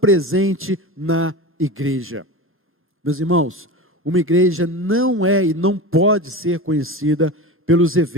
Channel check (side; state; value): both; normal; correlation 0.27